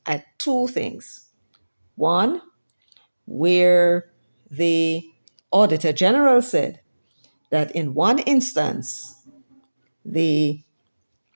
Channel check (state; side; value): inverted; both; correlation -1.00